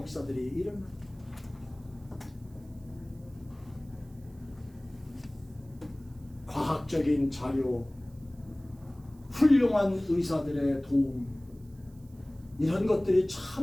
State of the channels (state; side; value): noise; right; hiss, 30 dB below the sound